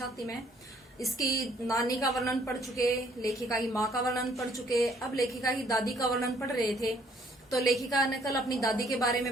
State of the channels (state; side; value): normal; both; correlation 0.63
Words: मैं। इसकी नानी का वर्णन पढ़ चुके, लेखिका की माँ का वर्णन पढ़ चुके, अब लेखिका की दादी का वर्णन पढ़ रहे थे। तो लेखिका ने कल अपनी दादी के बारे